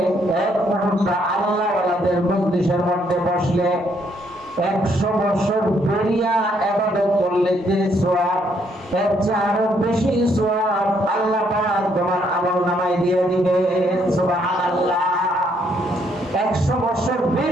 এক মুহূর্তে আল্লাহওয়ালাদের মজলিসের মধ্যে বসলে 100 বছর বেরিয়া ইবাদত করলে যে সওয়াব, এর চেয়ে আরো বেশি সওয়াব আল্লাহ পাক তোমার আমলনামায় দিয়ে দিবেন। সুবহানাল্লাহ। 100 বছর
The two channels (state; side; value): normal; both; correlation 0.71